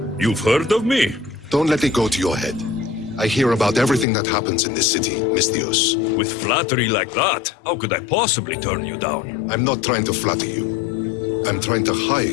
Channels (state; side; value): drops out; right; at 4.0 s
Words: You've heard of me? Don't let it go to your head. I hear about everything that happens in this city, Misthios. With flattery like that, how could I possibly turn you down? I'm not trying to flatter you. I'm trying to hire